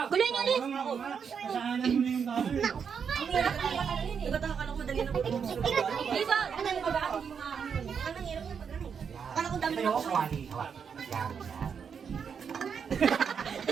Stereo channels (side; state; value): left; quieter; 6.8 dB